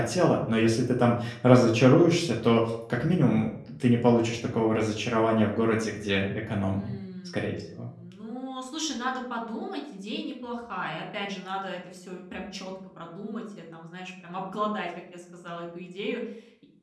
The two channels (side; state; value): both; identical; correlation 1.00